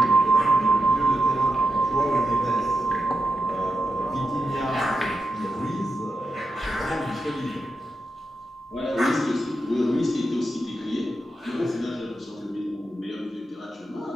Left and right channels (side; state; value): both; normal; correlation 0.88